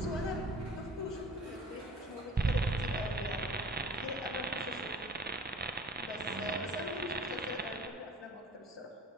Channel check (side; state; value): both; normal; correlation 0.45